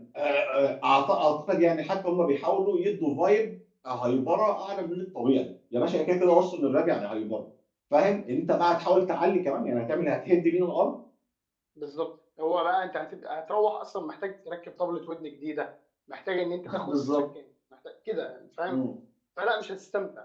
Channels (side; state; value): both; identical; correlation 1.00